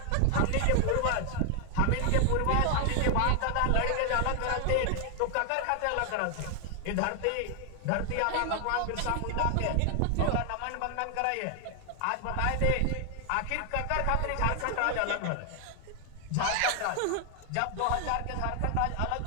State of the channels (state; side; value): different; both; correlation 0.00